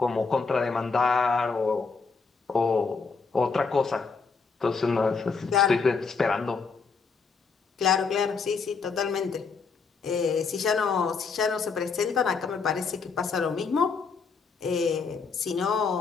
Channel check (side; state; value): right; quieter; 5.0 dB